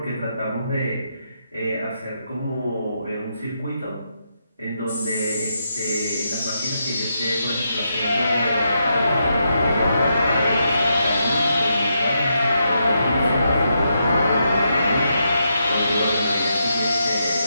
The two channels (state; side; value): inverted; both; correlation -0.82